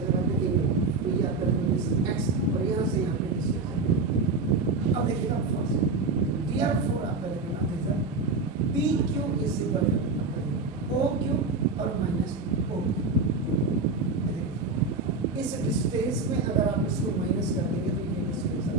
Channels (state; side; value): quieter; left; 3.9 dB